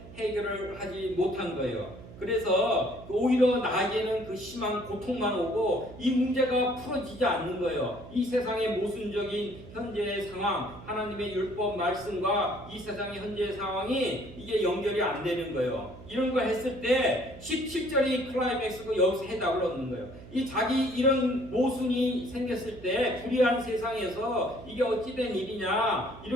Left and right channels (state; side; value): noise; right; hum, 16 dB below the sound